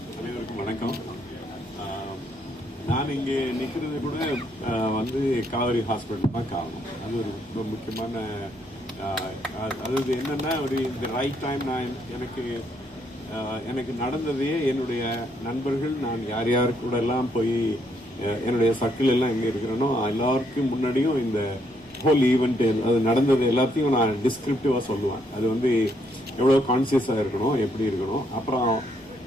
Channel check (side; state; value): both; normal; correlation 0.73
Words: அனைவருக்கும் வணக்கம். நான் இங்கே நிற்கிறது கூட வந்து காவேரி ஹாஸ்பிட்டல் தான் காரணம். அது ஒரு ரொம்ப முக்கியமான அதாவது என்னென்னா ஒரு இந்த ரைட் டைம். நான் எனக்கு நடந்ததே என்னுடைய நண்பர்கள், நான் யார் யார் கூட எல்லாம் போய் என்னுடைய சர்க்கிள் எல்லாம் எங்கே இருக்கிறேனோ எல்லாருக்கும் முன்னாடியும் இந்த ஹோல் ஈவெண்ட் அது நடந்தது எல்லாத்தையும் நான் டிஸ்கிரிப்டிவாக சொல்லுவேன். அது வந்து எவ்வளோ கான்சியஸாக இருக்கணும், எப்படி இருக்கணும். அப்புறம்